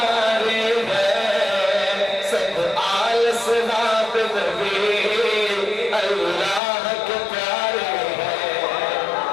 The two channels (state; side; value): drops out; right; at 6.6 s